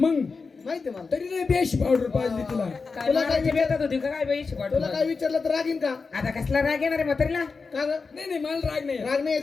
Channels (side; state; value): right; quieter; 4.6 dB